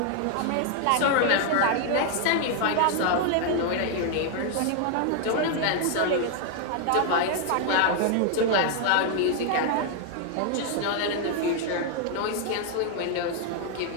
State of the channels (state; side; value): different; both; correlation 0.00